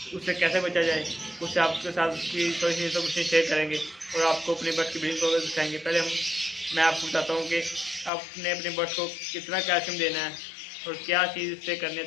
उससे कैसे बचा जाए। उससे आपके साथ उसकी थोड़ी सी इन्फॉर्मेशन शेयर करेंगे और आपको अपनी बर्ड की ब्रीडिंग प्रोग्रेस दिखाएंगे। पहले मैं आपको बताता हूँ कि आपने अपने बर्ड को कितना कैल्शियम देना है और क्या चीज़ इससे करनी है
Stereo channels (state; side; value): drops out; right; at 8.1 s